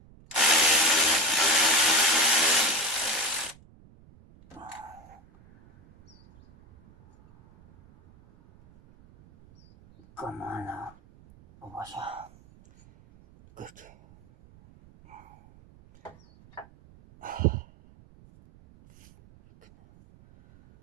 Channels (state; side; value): noise; right; rumble, 26 dB below the sound